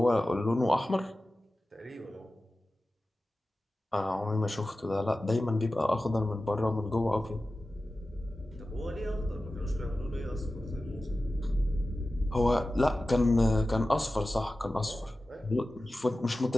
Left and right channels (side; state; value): both; normal; correlation 0.95